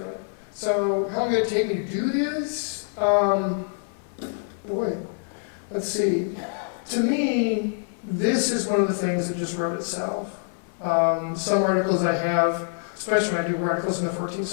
So how long did it take me to do this? Boy, let's see. To me, this is one of the things that just wrote itself. Some articles I have, especially when I do articles in the 14th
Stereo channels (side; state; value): right; silent; 61 dB below the other